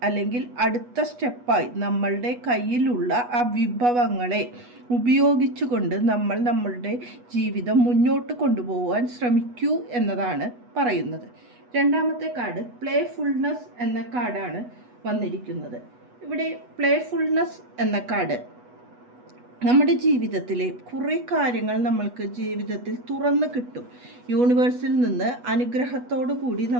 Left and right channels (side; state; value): left; late; 8.2 ms